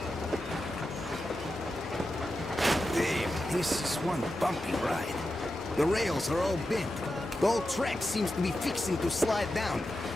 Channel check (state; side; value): normal; both; correlation 0.90